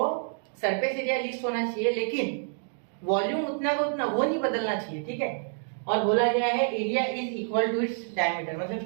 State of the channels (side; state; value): left; silent; 59 dB below the other